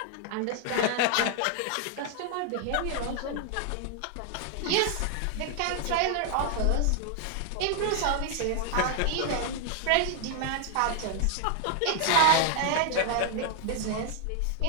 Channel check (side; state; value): both; different; correlation 0.00